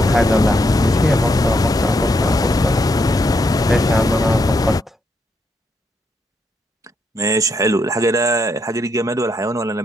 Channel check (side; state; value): both; normal; correlation 0.78